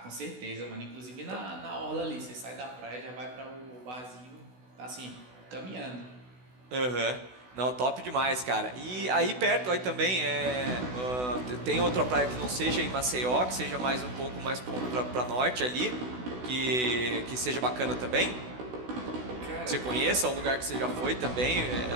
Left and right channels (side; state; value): left; late; 16 ms